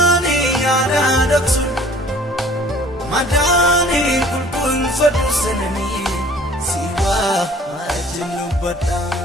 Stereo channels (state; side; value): normal; both; correlation 0.52